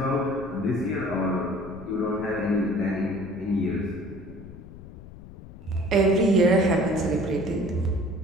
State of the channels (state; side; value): noise; left; rumble, 16 dB below the sound